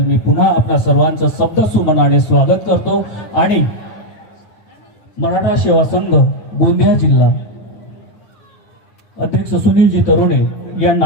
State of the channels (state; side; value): late; right; 9.4 ms